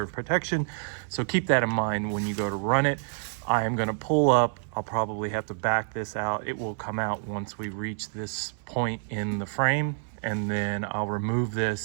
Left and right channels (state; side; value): silent; left; 59 dB below the other